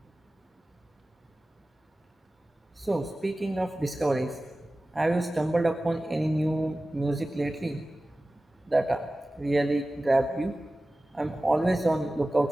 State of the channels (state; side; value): normal; both; correlation 0.96